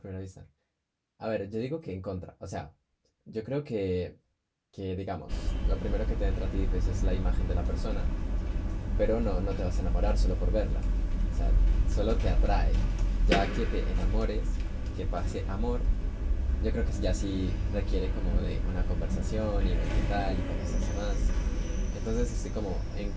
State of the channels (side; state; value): both; identical; correlation 1.00